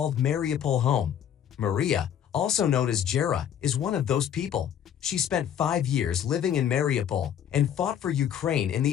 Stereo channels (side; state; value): right; quieter; 9.4 dB